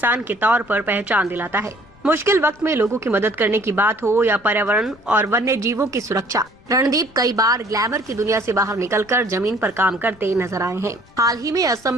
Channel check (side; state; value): left; noise; rumble, 28 dB below the sound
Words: के तौर पर पहचान दिलाता है। मुश्किल वक्त में लोगों की मदद करने की बात हो या पर्यावरण और वन्य जीवों की सुरक्षा, रणदीप कई बार ग्लैमर की दुनिया से बाहर निकलकर जमीन पर काम करते नजर आए हैं। हाल ही में असम